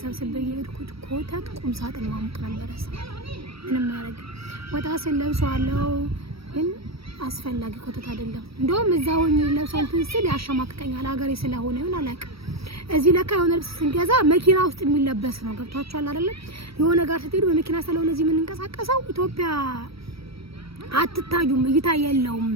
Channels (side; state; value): left; late; 0.76 ms